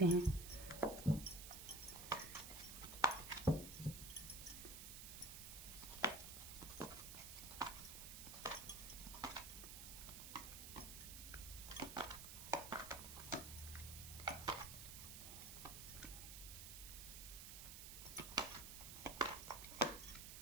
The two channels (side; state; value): right; noise; hiss, 9 dB below the sound